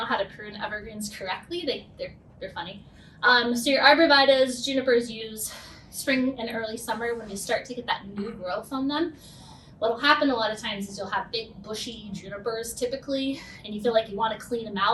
how to prune evergreens correctly. They're funny. So your arborvitaes, junipers use spring and early summer when you start to get that new growth on them. What'll happen a lot of times is you'll have big bushy junipers typically, and you feel like you want to clean them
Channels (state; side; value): identical; both; correlation 1.00